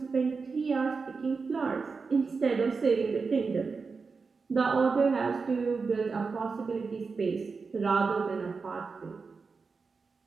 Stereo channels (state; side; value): quieter; left; 4.7 dB